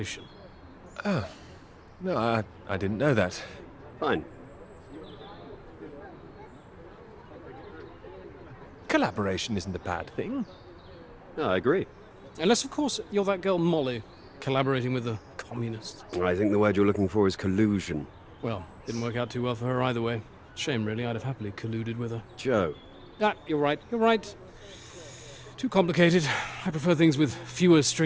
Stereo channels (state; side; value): identical; both; correlation 1.00